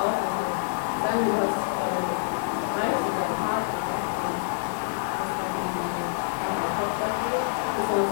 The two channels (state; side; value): silent; right; digital silence